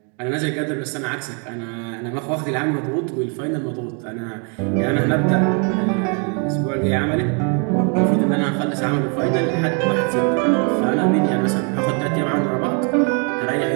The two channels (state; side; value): quieter; left; 37.6 dB